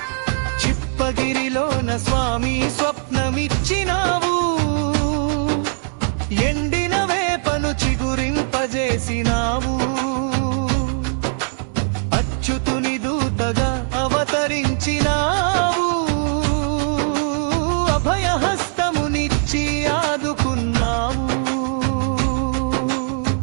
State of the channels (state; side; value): silent; left; 65 dB below the other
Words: చిప్పగిరిలోన స్వామి స్వప్నమిచ్చినావు, ఎండిన వేపను చిగురింపజేసినావు. అచ్యుతుని దూతగా అవతరించినావు, అభయహస్తమునిచ్చి ఆదుకున్నావు.